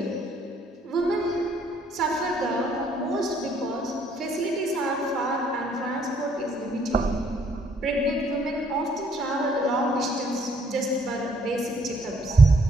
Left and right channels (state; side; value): normal; both; correlation 0.66